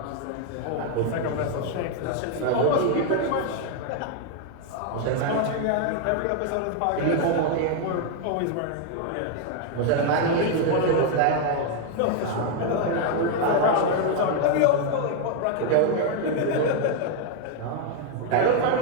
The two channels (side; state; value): both; different; correlation 0.00